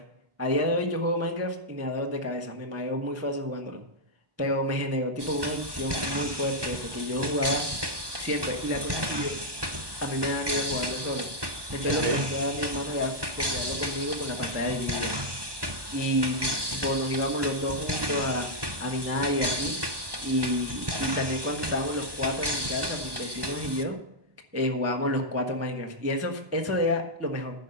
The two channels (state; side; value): late; left; 1.2 ms